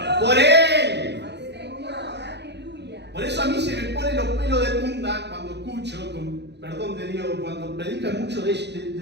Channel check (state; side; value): late; left; 0.50 ms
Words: Por él. Por eso a mí se me ponen los pelos de punta cuando escucho, con perdón de Dios, cuando predican mucho